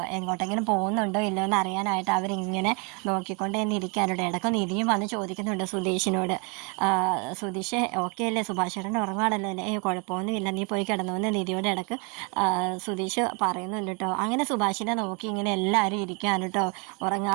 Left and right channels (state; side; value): quieter; left; 33.4 dB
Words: എങ്ങോട്ടെങ്കിലും പോകുന്നുണ്ടോ ഇല്ലോ എന്ന് അറിയാനായിട്ട് അവരിങ്ങനെ നോക്കിക്കൊണ്ട് തന്നെ ഇരിക്കാനുണ്ട്. ഇടയ്ക്ക് നിധിയും വന്ന് ചോദിക്കുന്നുണ്ട് സുധീഷിനോട്, സുധീഷ് ഓക്കെ അല്ലേ, സുഭാഷ് ചേട്ടൻ്റെ ഉറങ്ങാണല്ലോ അല്ലേ, കുഴപ്പമൊന്നുമില്ല, നീ പോയി കിടന്നുവെന്ന് നിധിയോട് ഇടയ്ക്ക് സുധീഷ് പറയുന്നുണ്ട് കേട്ടോ. അങ്ങനെ സുഭാഷിനെ നോക്കി ഇങ്ങനെ എല്ലാവരും ഇരിക്കാണ് കേട്ടോ